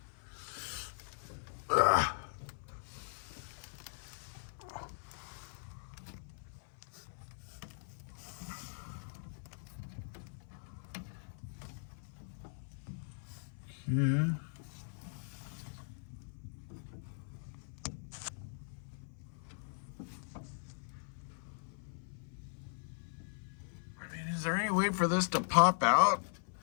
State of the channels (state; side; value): silent; right; 51 dB below the other